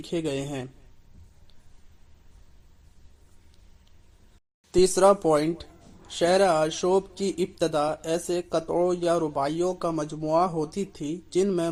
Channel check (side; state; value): both; identical; correlation 1.00